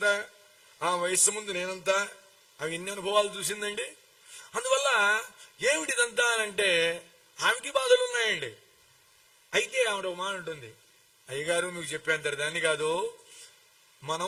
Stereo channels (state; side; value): identical; both; correlation 1.00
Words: ఆ వయస్సు ముందు నేనంతా, ఆమె ఎన్ని అనుభవాలు చూసిందండి. అందువల్ల ఏమిటిదంతా అంటే ఆమెకి బాధలు ఉన్నాయండి. అయితే ఆవిడ ఒక మాట ఉంటుంది, అయ్యగారు మీకు చెప్పేంత దాన్ని కాదు,